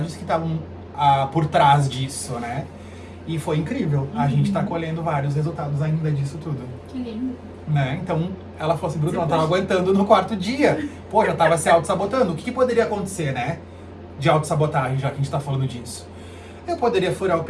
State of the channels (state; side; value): identical; both; correlation 1.00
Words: que estavam por trás disso, né? E foi incrível. A gente tá colhendo vários resultados ainda disso tudo. Que lindo. Né? Então, ela falou assim, Bruno, ela tava aguentando no 4º dia. Pô, já tava se auto-sabotando. O que poderia acontecer, né? De auto-sabotagem, já que a gente tá falando disso. Eu poderia furar o